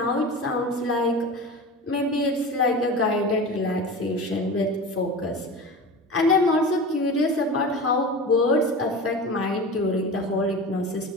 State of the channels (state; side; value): normal; both; correlation 0.31